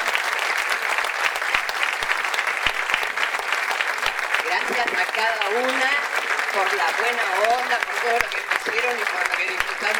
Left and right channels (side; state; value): both; identical; correlation 1.00